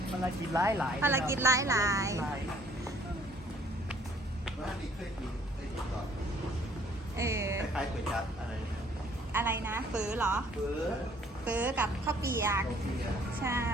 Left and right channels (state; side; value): normal; both; correlation 0.60